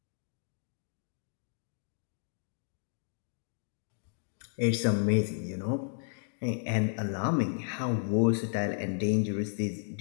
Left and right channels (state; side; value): silent; right; digital silence